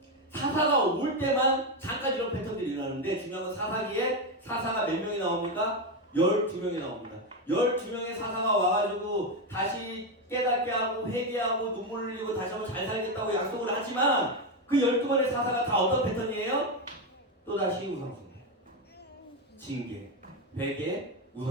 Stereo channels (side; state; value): both; normal; correlation 0.09